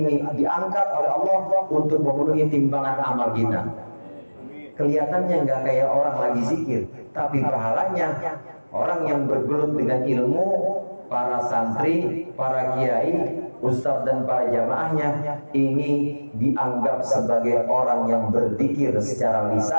diangkat oleh Allah untuk memenuhi timbangan amal kita. Kelihatannya nggak kayak orang lagi zikir, tapi pahalanya orang yang bergelut dengan ilmu, para santri, para kiai, ustadz dan para jamaahnya ini dianggap sebagai orang yang berzikir secara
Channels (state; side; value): inverted; both; correlation -1.00